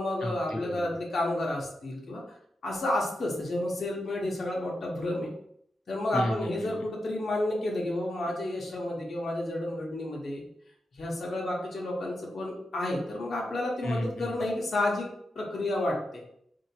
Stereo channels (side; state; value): both; normal; correlation 0.87